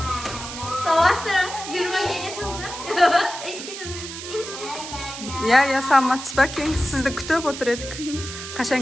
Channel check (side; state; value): right; noise; hiss, 9 dB below the sound